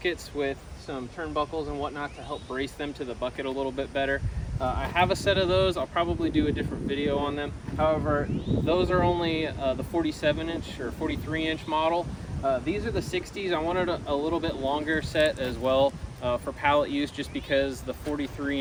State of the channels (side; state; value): both; identical; correlation 1.00